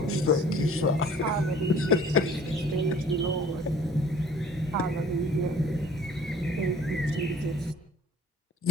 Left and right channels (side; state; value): both; normal; correlation 0.51